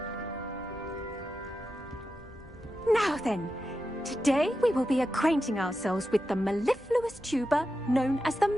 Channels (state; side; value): normal; both; correlation 0.89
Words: Now then, today we will be acquainting ourselves with the mellifluous tuber known as the